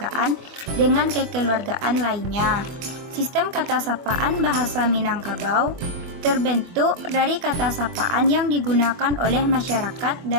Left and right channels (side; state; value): left; late; 23 ms